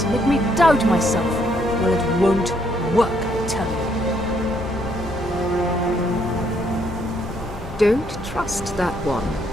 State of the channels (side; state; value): left; noise; hum, 14 dB below the sound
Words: make me doubt myself. Well, it won't work, I tell you. Don't trust that one.